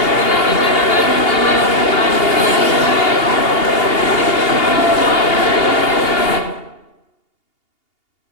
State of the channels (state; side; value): late; right; 2.8 ms